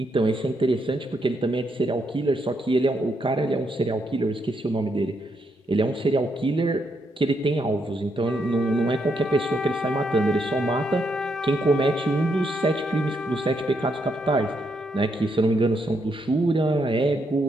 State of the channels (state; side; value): normal; both; correlation 0.78